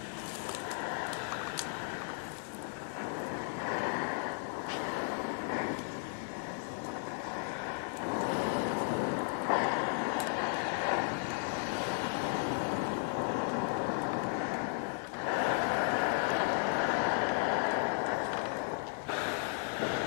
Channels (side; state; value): right; silent; 54 dB below the other